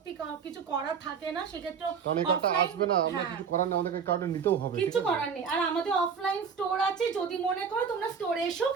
কিছু করার থাকে না, সেক্ষেত্রে কারণ এই কার্ডটা আসবে না, আমরা কিছু করার নেই, আমাদেরকে কার্ডটা নিতেও হবে, কিছু করার নেই। আর আমাদের অফলাইন স্টোর আছে, যদি মনে করো তোমরা স্টোরে এসেও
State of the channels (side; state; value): left; quieter; 6.4 dB